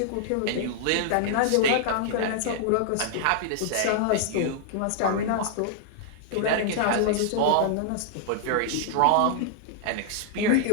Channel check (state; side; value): different; both; correlation -0.01